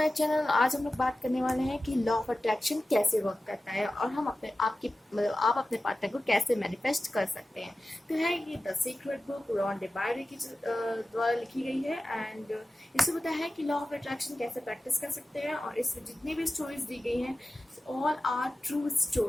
channel. आज हम लोग बात करने वाले हैं कि लॉ ऑफ अट्रैक्शन कैसे वर्क करता है और हम आप अपने पार्टनर को कैसे मैनिफेस्ट कर सकते हैं। तो है ये द सीक्रेट बुक रॉन डिबायरी की द्वारा लिखी गई है एंड इसमें बताया है कि लॉ ऑफ अट्रैक्शन कैसे प्रैक्टिस कर सकते हैं। और इसमें जितनी भी स्टोरीज दी गई हैं ऑल आर ट्रू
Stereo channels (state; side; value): normal; both; correlation 0.94